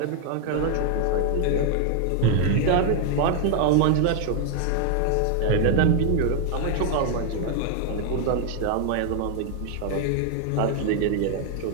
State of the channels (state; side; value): different; both; correlation 0.00